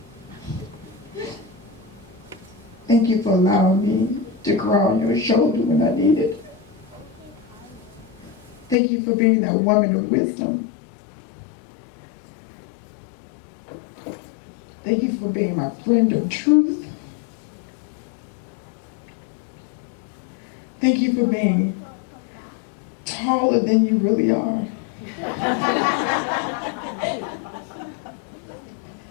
Thank you for allowing me to cry on your shoulder when I need it. Thank you for being that woman of wisdom. Thank you for being my friend of truth. Thank you for being taller than you really are.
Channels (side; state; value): right; drops out; at 8.8 s